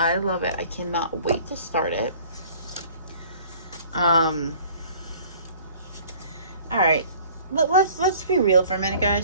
love it. I cannot wait to start it. Alright. Let's be real for a minute,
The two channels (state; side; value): inverted; both; correlation -0.51